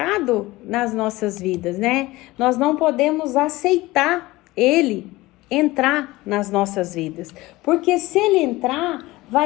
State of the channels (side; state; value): right; quieter; 19.6 dB